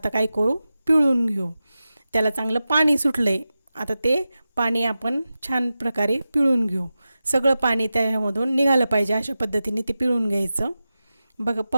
काय करू, पिळून घेऊ. त्याला चांगलं पाणी सुटलं आहे. आता ते पाणी आपण छान प्रकारे पिळून घेऊ. सगळं पाणी त्याच्यामधून निघालं पाहिजे अशा पद्धतीने ते पिळून घ्यायचं. बघा,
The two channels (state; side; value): inverted; both; correlation -0.93